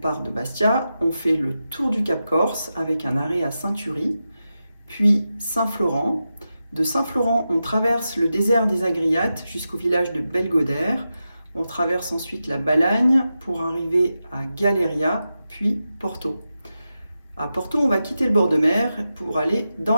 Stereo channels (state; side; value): inverted; both; correlation -0.90